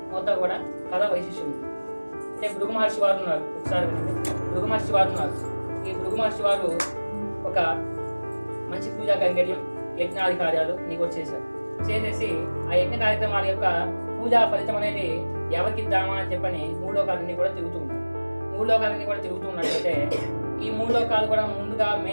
మొత్తం కూడా కథ వైశిష్యం ఉంది. అంటే భృగు మహర్షి వారు ఉన్నారు, ఒకసారి భృగు మహర్షి వారు ఉన్నారు. ఈ భృగు మహర్షి వారు ఒక మంచి పూజా కైంకర్యం యజ్ఞాది కార్యాలు నీకు వచ్చేసారు. చేసేసి ఆ యజ్ఞ కార్యక్రమాల యొక్క పూజా ఫలితం అనేది ఎవరికి ఇద్దామా అని చెప్పని 3 లోకాలన్నీ కూడా తిరుగుతూ ఉంటారు. మూడు లోకాలన్నీ కూడా తిరుగుతూ ఉన్నట్లయితే ఈ మూడు లోకాలు కూడా ముందుగా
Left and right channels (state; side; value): inverted; both; correlation -1.00